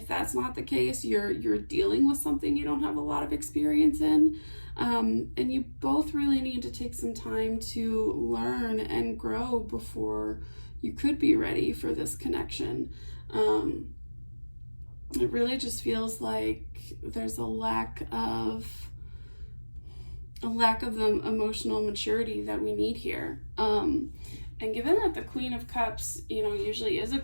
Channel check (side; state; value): both; inverted; correlation -1.00